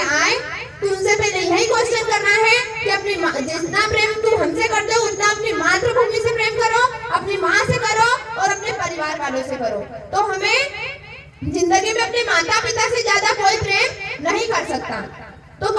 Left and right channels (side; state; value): both; identical; correlation 1.00